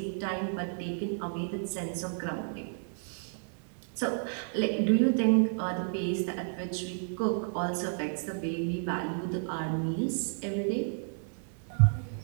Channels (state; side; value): silent; left; 57 dB below the other